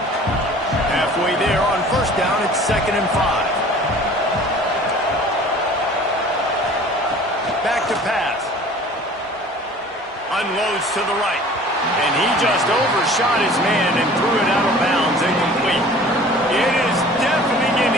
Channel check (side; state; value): both; normal; correlation 0.47